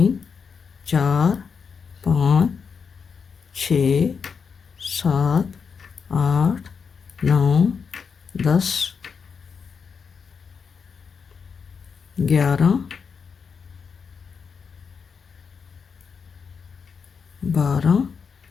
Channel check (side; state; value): right; quieter; 5.9 dB